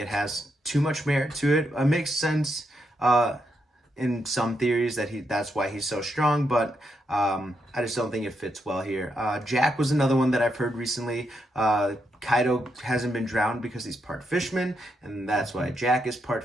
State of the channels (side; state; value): both; normal; correlation 0.81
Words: has too much merit to it. It makes sense in some theories that that's why he's so strong, but I just don't think it fits well here. Jack was another one that I've heard recently. Kaido hasn't been drowned because he's part fishman, and that's why Jack is part